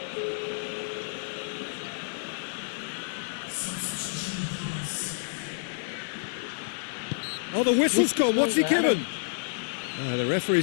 Oh, the whistle's gone. What's he given? The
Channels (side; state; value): right; silent; digital silence